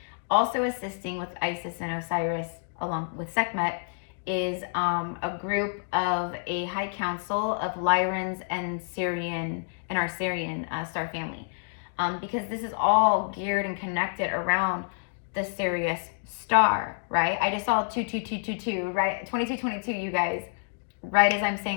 Also assisting with Isis and Osiris along with Sekhmet is a group of a high council of Lyrans and Syrian and our Syrian star family, because this is all geared and connected around the Sirius star, right? I just saw 22222, right? 2222, you guys, right as I'm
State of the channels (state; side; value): silent; right; digital silence